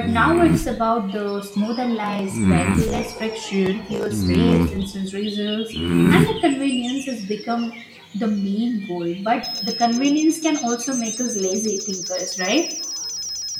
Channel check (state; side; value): identical; both; correlation 1.00